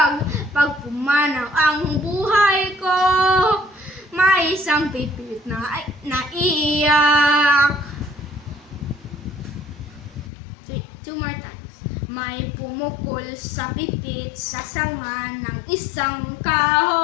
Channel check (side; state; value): right; drops out; at 10.3 s